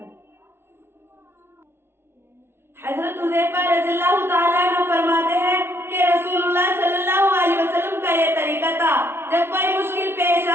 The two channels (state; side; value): late; left; 0.12 ms